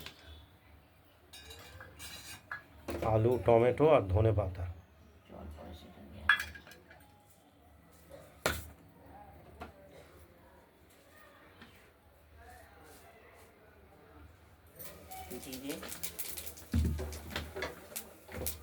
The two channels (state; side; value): identical; both; correlation 1.00